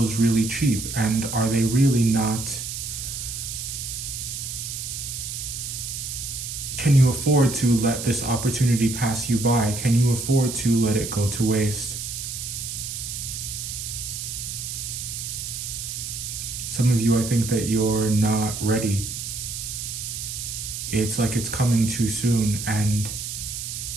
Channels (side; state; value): right; noise; hiss, 6 dB below the sound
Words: really cheap, and are they really not? Can you afford to let this opportunity pass you by? Can you afford to let it go to waste? Some of you, I think that you're not ready. It's like it's coming too soon, and